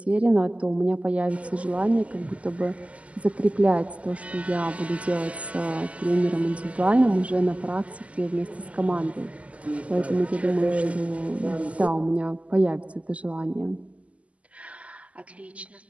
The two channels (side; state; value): left; late; 0.066 ms